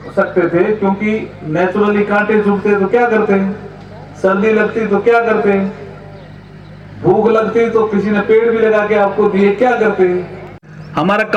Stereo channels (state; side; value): identical; both; correlation 1.00